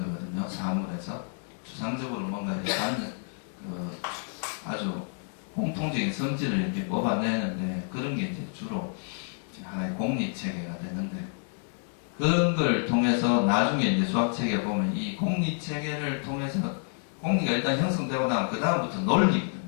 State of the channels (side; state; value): right; silent; 59 dB below the other